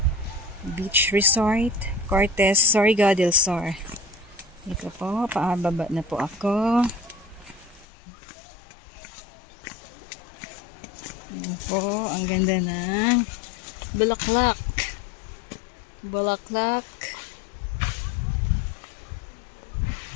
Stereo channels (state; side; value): drops out; right; at 7.9 s